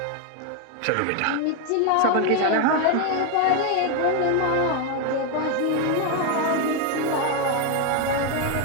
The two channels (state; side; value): different; both; correlation 0.01